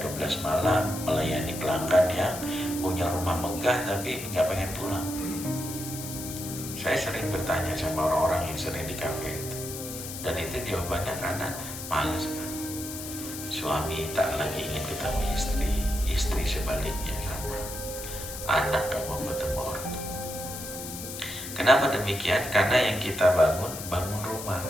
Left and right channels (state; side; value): noise; left; hiss, 9 dB below the sound